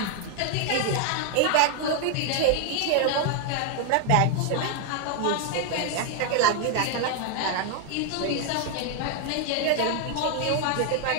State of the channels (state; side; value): different; both; correlation 0.00